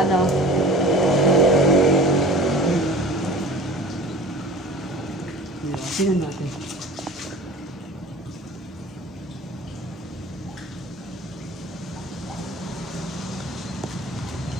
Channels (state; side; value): normal; both; correlation 0.41